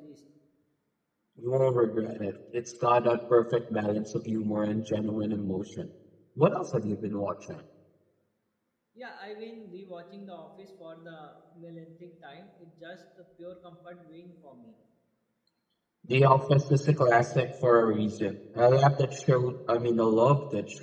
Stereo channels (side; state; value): both; identical; correlation 1.00